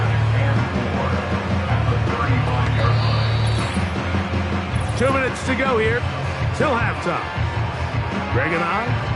Two minutes to go here till halftime. Greg and I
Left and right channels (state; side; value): identical; both; correlation 1.00